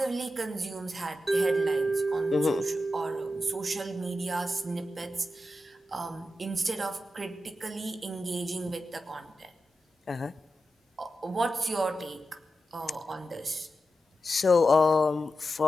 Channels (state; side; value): normal; both; correlation 0.90